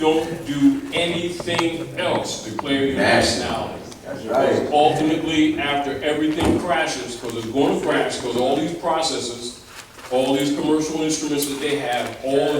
declare your nationality. That's right. Ultimately, after everything crashes, because it's going to crash, because all these processes, all these commercial instruments that they have, all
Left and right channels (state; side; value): identical; both; correlation 1.00